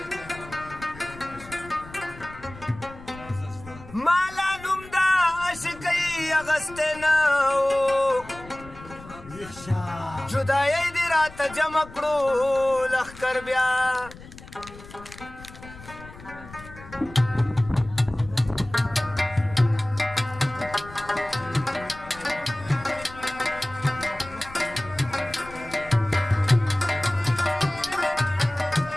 مالا نوم دا عاشقۍ اغستی نه و جدایۍ دې راته جمع کړو لښکر بیا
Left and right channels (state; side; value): noise; left; rumble, 17 dB below the sound